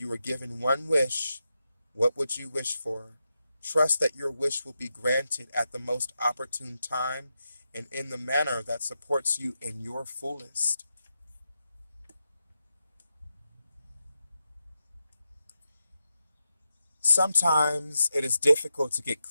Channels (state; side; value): inverted; both; correlation -0.87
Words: you were given one wish, what would you wish for? Trust that your wish will be granted at the most opportune time and in the manner that supports you in your fullest. Sometimes it is difficult to get